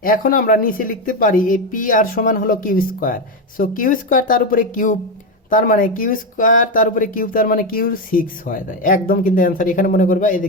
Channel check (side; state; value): both; normal; correlation 0.11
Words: এখন আমরা নিচে লিখতে পারি এই পি আর সমান হলো Q square, so Q square তার উপরে কিউব, তার মানে কিউ স্কোয়ার তার উপরে কিউব, তার মানে কিউ সিক্স হয়ে যায় একদম, কিন্তু অ্যান্সার এখানে মনে করবা এই যে